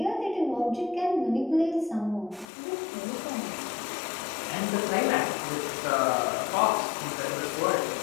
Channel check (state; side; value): drops out; right; at 2.5 s